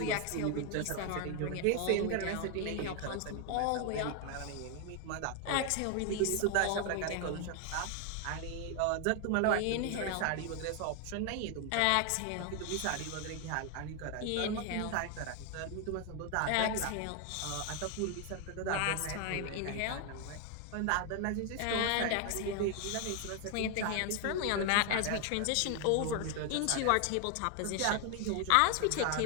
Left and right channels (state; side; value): different; both; correlation 0.01